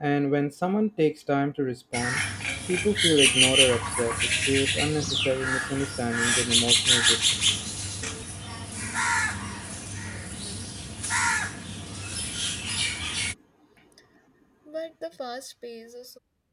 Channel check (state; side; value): identical; both; correlation 1.00